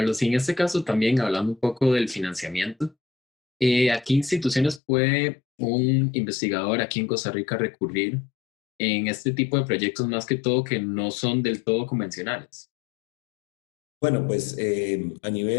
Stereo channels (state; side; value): drops out; right; at 4.8 s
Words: Y en este caso también hablando un poco del financiamiento, ¿a qué instituciones puede un investigador aquí en Costa Rica recurrir en este tipo de proyectos más que todo que no son del todo convencionales? Bueno, pues a